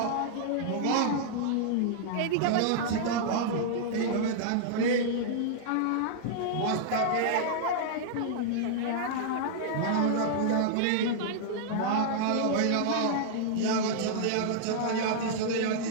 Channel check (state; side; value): different; both; correlation -0.01